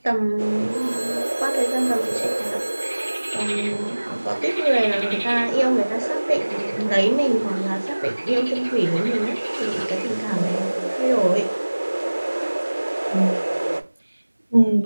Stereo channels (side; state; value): both; inverted; correlation -1.00